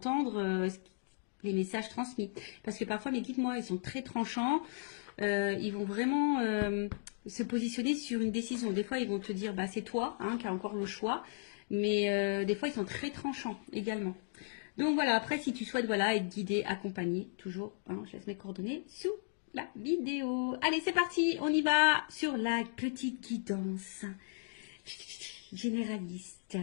les messages transmis. Parce que parfois, mes guides, moi, ils sont très tranchants. Ils vont vraiment se positionner sur une décision. Des fois, ils vont te dire, c'est toi qui as encore le choix. Mais des fois, ils sont très tranchants également. Donc voilà, après, si tu souhaites être guidé, accompagné, toujours, je laisse mes coordonnées sous la vidéo. Allez, c'est parti, on y va sur la petite guidance généraliste.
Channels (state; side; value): silent; right; digital silence